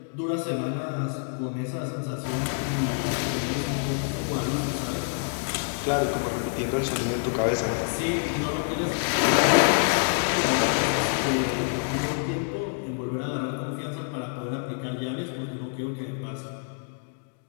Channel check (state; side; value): silent; right; 60 dB below the other